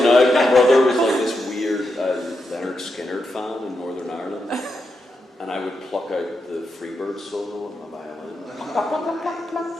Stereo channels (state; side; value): normal; both; correlation 0.85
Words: out. My brother was like this weird Leonard Skinner fan in Northern Ireland, and I would pluck out the Freebird solo on my violin. And